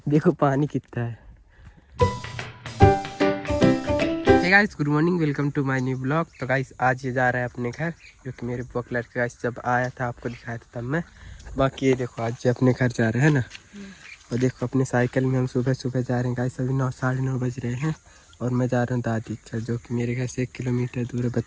देखो पानी कितना है। Hey guys, good morning, welcome to my new blog. तो गाइस आज ये जा रहा है अपने घर, जो कि मेरे ब्लॉग लड़के गाइस जब आया था आपको दिखाया था तब मैं। बाकी ये देखो आज अपने घर जा रहा है ना। और देखो अपने साइकिल में हम सुबह सुबह जा रहे हैं गाइस। अभी 9 साढ़े 9 बज रहे हैं और मैं जा रहा हूँ दादी घर, जो कि मेरे घर से 1 किलोमीटर दूर है,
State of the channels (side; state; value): both; identical; correlation 1.00